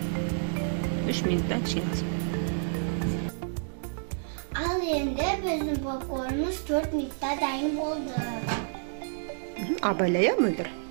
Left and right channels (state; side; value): silent; left; digital silence